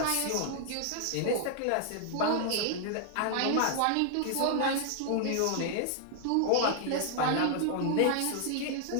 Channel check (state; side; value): different; both; correlation 0.00